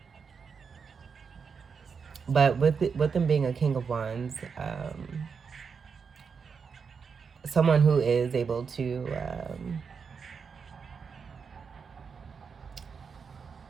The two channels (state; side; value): quieter; left; 5.8 dB